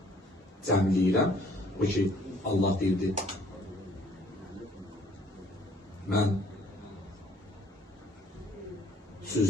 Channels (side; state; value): both; normal; correlation 0.59